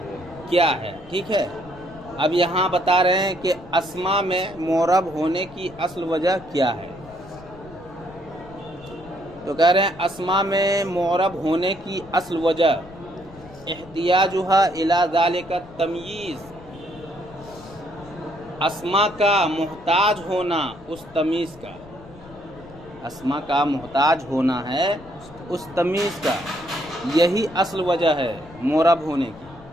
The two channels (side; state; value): left; noise; rumble, 20 dB below the sound